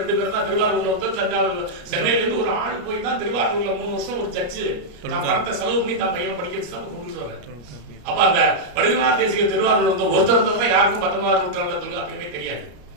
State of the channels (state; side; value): late; left; 33 ms